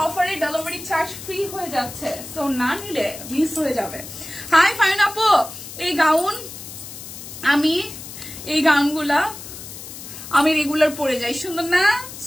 অফারে ডেলিভারি চার্জ ফ্রি হয়ে যাচ্ছে। সো না নিলে মিস হয়ে যাবে। হাই ফাইন আপু, এই গাউন এই গাউনগুলা আমি রেগুলার পরে যাই। সুন্দর না?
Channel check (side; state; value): left; noise; hiss, 12 dB below the sound